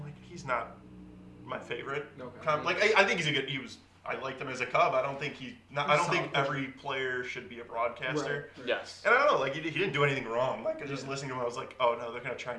he's not my favorite. Okay. I think he's a good. I liked him as a Cub. I don't think I don't think every player should be a broadcaster. Right. Yes. And I don't know. He didn't do anything wrong. Just listening to him, I was oh no, they're gonna try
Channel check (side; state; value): both; identical; correlation 1.00